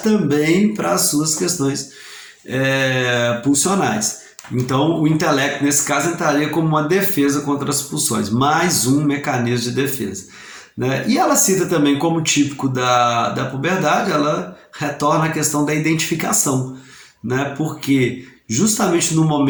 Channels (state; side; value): identical; both; correlation 1.00